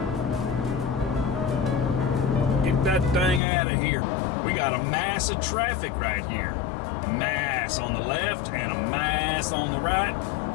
Get that thing out of here. We got a mass of traffic right here. Mass on the left and a mass on the right.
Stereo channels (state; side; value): drops out; right; at 3.4 s